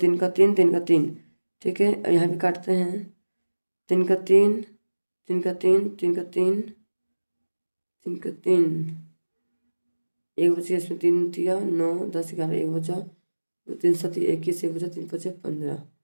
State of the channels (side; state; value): both; inverted; correlation -1.00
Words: का 3, 3 का 3, ठीक है। अब यहाँ भी काटते हैं, 3 का 3, 3 का 3, 3 का 3, 3 का 3, एक बचा, इसमें 3 दिया 9 10 11, एक बचा, 3 7 21, एक बचा, 3 5 15।